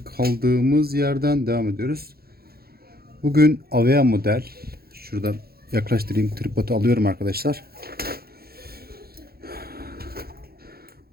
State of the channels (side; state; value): left; late; 0.45 ms